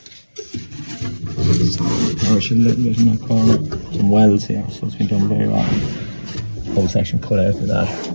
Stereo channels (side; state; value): both; inverted; correlation -1.00